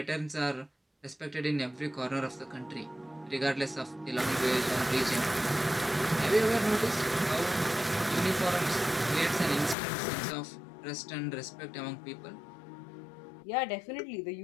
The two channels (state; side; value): drops out; right; at 9.8 s